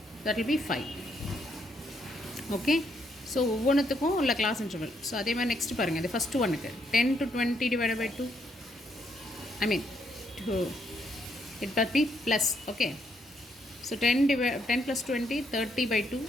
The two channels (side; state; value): both; normal; correlation 0.74